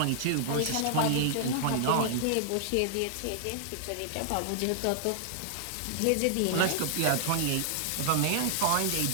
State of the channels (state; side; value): different; both; correlation -0.01